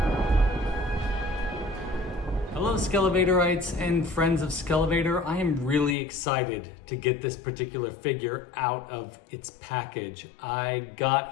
Hello Skele Vaderites and friends of Skele Vader. I am really excited to get this particular figure out of its package. I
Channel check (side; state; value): right; drops out; at 6.0 s